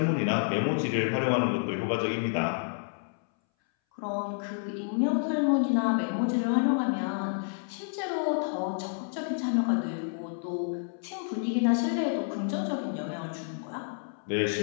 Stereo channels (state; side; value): silent; right; 58 dB below the other